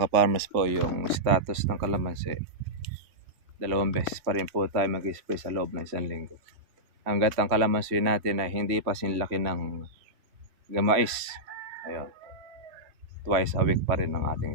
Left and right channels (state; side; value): late; left; 3.1 ms